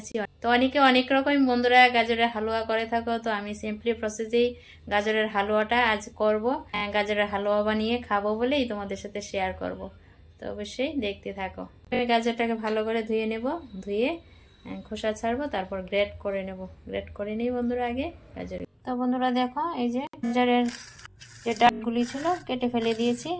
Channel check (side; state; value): both; identical; correlation 1.00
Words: তো অনেকে অনেক রকম বন্ধুরা গাজরের হালুয়া করে থাকো, তো আমি সিম্পলি প্রসেসেই গাজরের হালুয়াটা আজ করব। গাজরের হালুয়া বানিয়ে খাবো বলেই তোমাদের সাথে শেয়ার করব। তো অবশ্যই দেখতে থাকো। গাজরটাকে ভালো করে ধুয়ে নেব, ধুয়ে খোসা ছাড়বো, তারপর গ্রেট করে নেব। গ্রেট করে নিই বন্ধুরা আগে গাজর। তো বন্ধুরা দেখো, এই যে গাজরের যে ডালগুলি ছিল কেটে ফেলে দিয়েছি